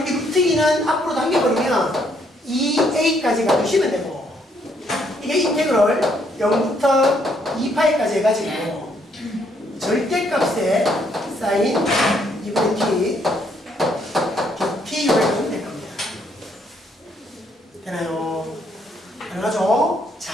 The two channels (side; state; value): both; normal; correlation 0.70